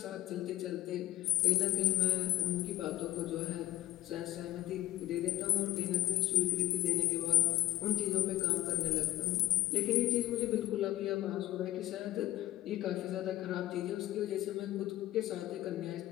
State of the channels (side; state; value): right; quieter; 15.3 dB